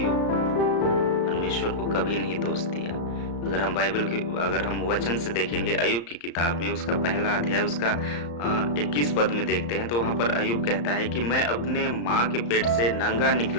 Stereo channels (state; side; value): late; right; 34 ms